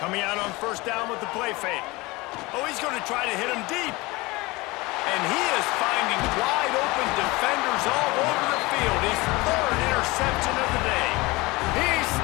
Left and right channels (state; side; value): quieter; right; 22.7 dB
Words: out on first down with the play fake. Oh, he's going to try to hit him deep. And he is finding wide open defenders all over the field. field. His third interception of the day. He's